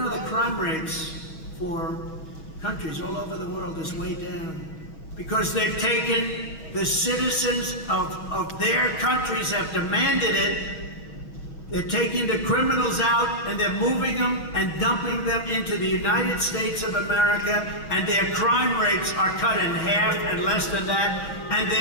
the crime rates for countries all over the world is way down because they've taken the citizens of their countries have demanded it. They're taking the criminals out and they're moving them and dumping them into the United States of America, and their crime rates are cut in half and less than that, and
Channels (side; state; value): right; late; 6.2 ms